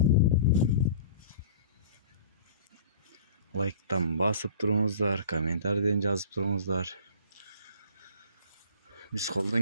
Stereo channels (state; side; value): inverted; both; correlation -0.45